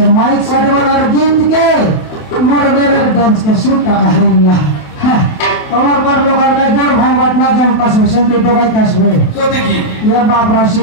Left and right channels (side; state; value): right; late; 28 ms